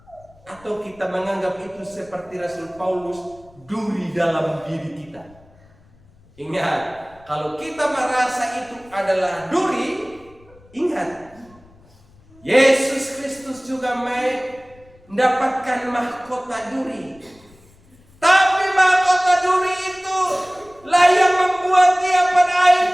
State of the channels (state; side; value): noise; left; rumble, 28 dB below the sound